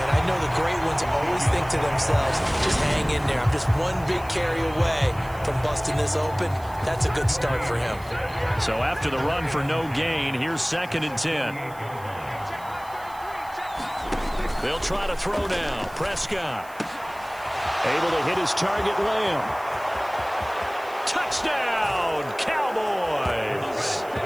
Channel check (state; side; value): noise; right; hiss, 22 dB below the sound